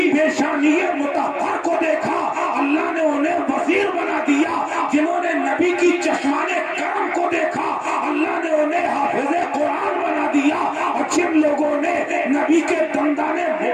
पेशानिये मुतहर को देखा, अल्लाह ने उन्हें वजीर बना दिया। जिन्होंने नबी की चश्माने करम को देखा, अल्लाह ने उन्हें हाफिज़े कुरान बना दिया। और जिन लोगों ने नबी के दंदाने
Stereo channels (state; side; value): identical; both; correlation 1.00